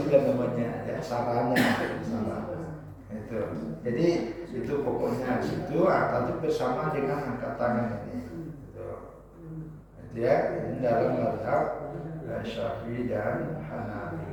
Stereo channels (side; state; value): both; identical; correlation 1.00